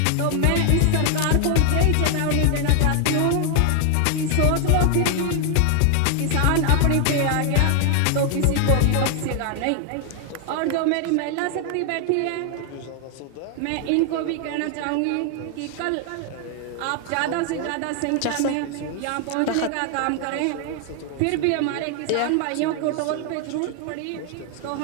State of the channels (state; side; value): different; both; correlation 0.00